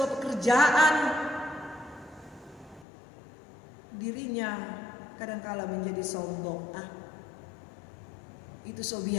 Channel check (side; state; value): right; drops out; at 2.9 s